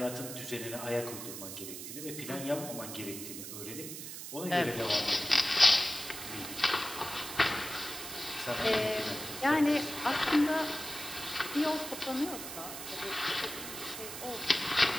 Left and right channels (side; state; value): right; noise; hiss, 9 dB below the sound